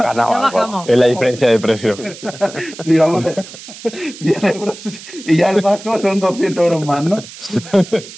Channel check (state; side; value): noise; right; hiss, 16 dB below the sound